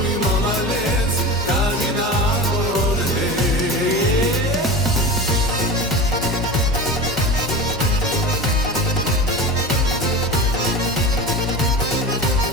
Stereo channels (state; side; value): normal; both; correlation 0.30